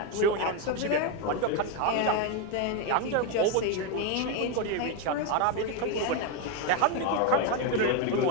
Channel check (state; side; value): different; both; correlation 0.02